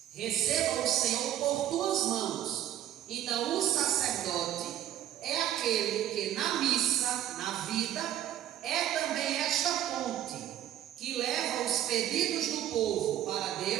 Receba o Senhor por tuas mãos. Então o sacerdote é aquele que na missa, na vida, é também esta ponte que leva os pedidos do povo para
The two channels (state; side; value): quieter; left; 11.7 dB